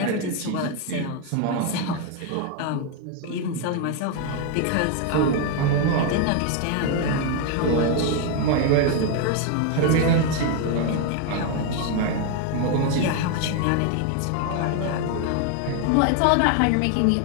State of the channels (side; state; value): both; different; correlation 0.01